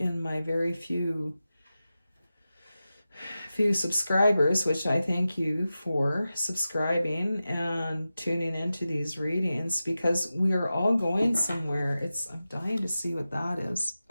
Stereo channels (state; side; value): inverted; both; correlation -0.93